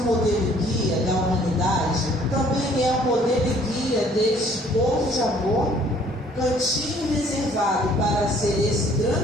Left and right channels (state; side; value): normal; both; correlation 0.58